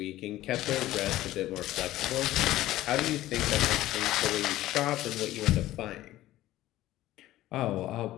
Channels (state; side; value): quieter; right; 15.3 dB